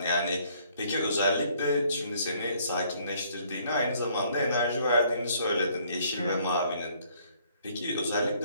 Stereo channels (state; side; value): inverted; both; correlation -0.63